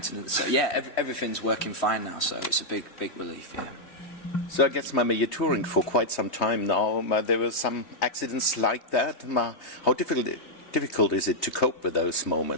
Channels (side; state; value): right; late; 3.2 ms